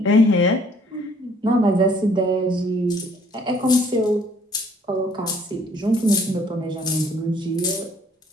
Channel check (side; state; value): both; normal; correlation 0.60